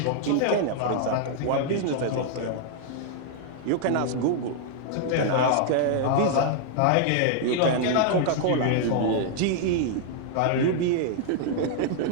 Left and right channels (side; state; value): both; different; correlation -0.01